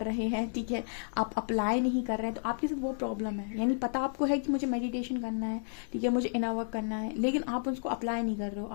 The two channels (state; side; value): silent; right; digital silence